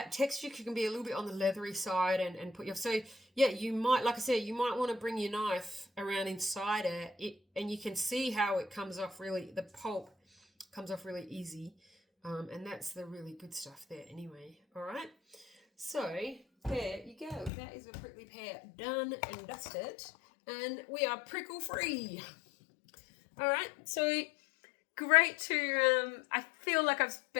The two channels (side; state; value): right; drops out; at 17.5 s